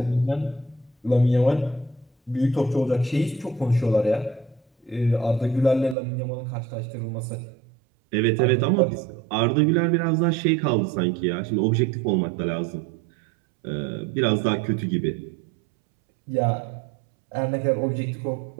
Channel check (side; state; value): left; drops out; at 6.0 s